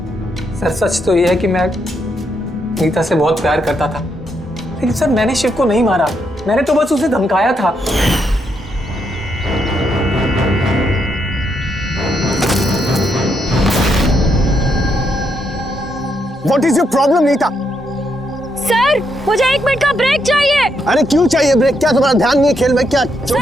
सर सच तो यह है कि मैं नीता से बहुत प्यार करता था, लेकिन सर मैंने शिव को नहीं मारा, मैंने तो बस उसे धमकाया था। What is your problem, Neeta? Sir मुझे 1 मिनट का ब्रेक चाहिए। अरे क्यों चाहिए ब्रेक? क्या तुम्हारा ध्यान नहीं है खेल में? क्या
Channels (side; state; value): both; normal; correlation 0.78